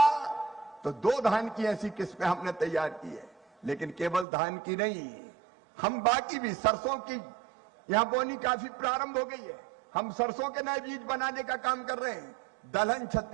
तो 2 धान की ऐसी किस्में हमने तैयार की है। लेकिन केवल धान की नहीं, हम बाकी भी, सरसों की यहां बोनी काफी प्रारंभ हो गई है। हम सरसों के नए बीज बनाने का काम कर रहे हैं। दलहन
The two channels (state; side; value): drops out; left; at 4.2 s